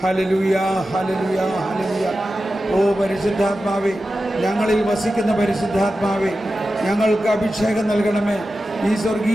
ഹല്ലേലൂയ, ഹല്ലേലൂയ, ഹല്ലേലൂയ. ഓ പരിശുദ്ധാത്മാവേ, ഞങ്ങളിൽ വസിക്കുന്ന പരിശുദ്ധാത്മാവേ, ഞങ്ങൾക്ക് അഭിഷേകം നൽകണമേ. ഈ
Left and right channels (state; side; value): normal; both; correlation 0.92